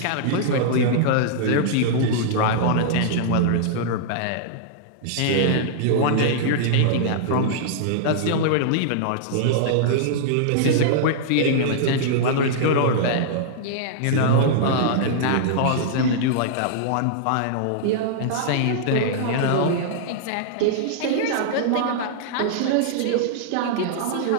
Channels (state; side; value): different; both; correlation -0.02